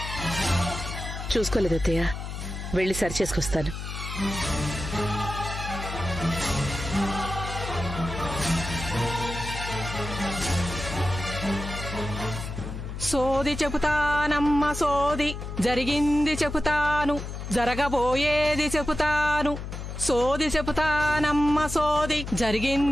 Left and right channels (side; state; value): left; noise; hum, 7 dB below the sound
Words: చూసుకోలేదు అత్తయ్య, వెళ్ళి సరి చేసుకొస్తాను. సోది చెబుతానమ్మ సోది, జరిగింది చెబుతాను, జరగబోయేది చెబుతాను. సోది చెబుతానమ్మ సోది,